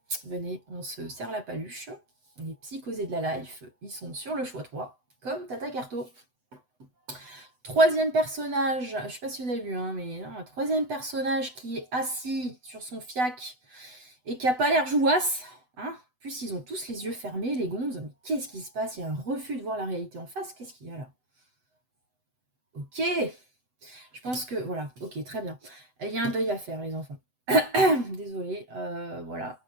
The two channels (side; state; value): left; late; 8.0 ms